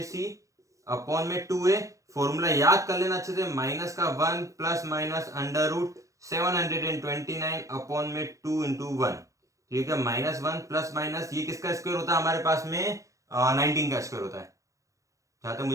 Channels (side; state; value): left; late; 0.15 ms